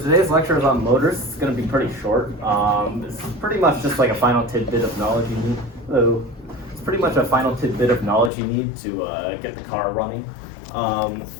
lecture is on motors. It's going to be pretty short. It's pretty much just like a final tidbit of knowledge you need. It's pretty much a final tidbit of knowledge you need to get the car running.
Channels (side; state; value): right; drops out; at 8.3 s